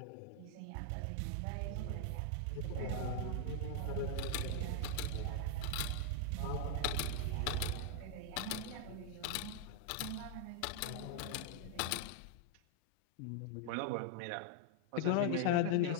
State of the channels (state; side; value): different; both; correlation 0.00